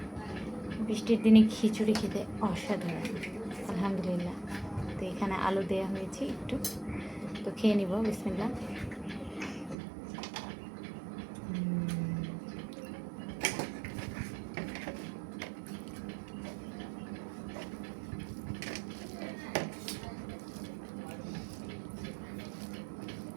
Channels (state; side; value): drops out; left; at 9.8 s